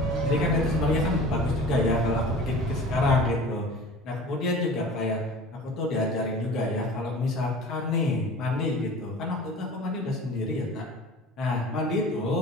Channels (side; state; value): both; normal; correlation 0.40